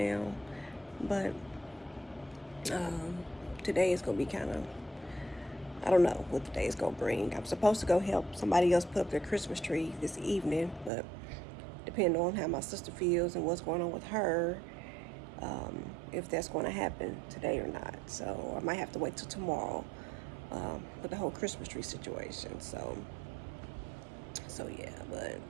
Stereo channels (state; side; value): drops out; left; at 10.9 s